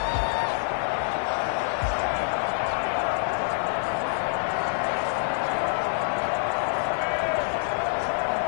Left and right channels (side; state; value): right; silent; digital silence